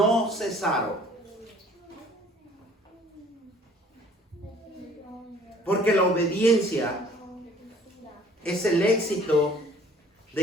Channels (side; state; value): both; normal; correlation 0.54